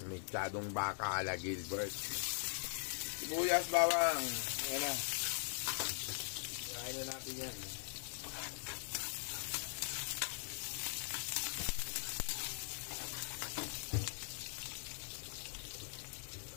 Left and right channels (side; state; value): right; silent; digital silence